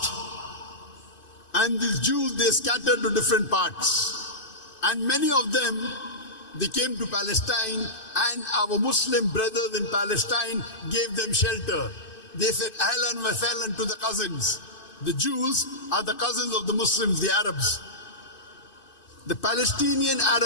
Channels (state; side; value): late; right; 2.5 ms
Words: And these Jews, they scattered to different parts. And many of them, they came to Palestine, and our Muslim brothers in Palestine gave them shelter. They said, Ahlan wa sahlan to the cousins. The Jews are the cousins of the Muslims, the Arabs. The Palestinian